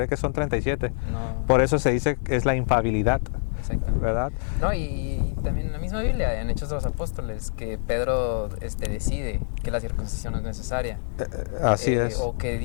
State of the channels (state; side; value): silent; right; 61 dB below the other